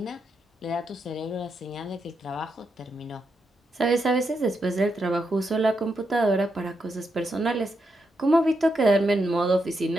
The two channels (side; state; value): both; normal; correlation 0.83